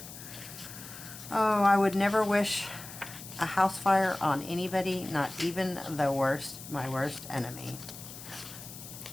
Oh, I would never wish a house fire on anybody, not even the worst, my worst enemy.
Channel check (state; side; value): noise; left; hiss, 13 dB below the sound